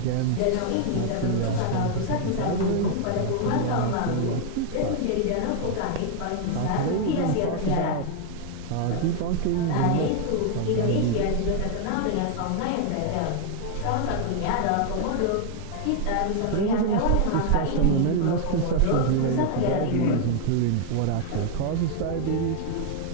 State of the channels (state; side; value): different; both; correlation 0.00